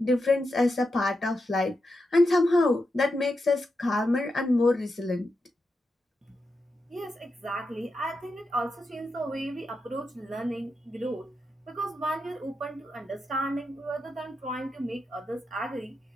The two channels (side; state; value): both; normal; correlation 0.87